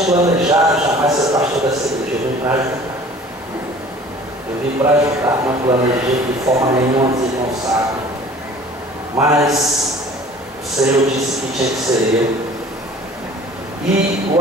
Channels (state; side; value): normal; both; correlation 0.48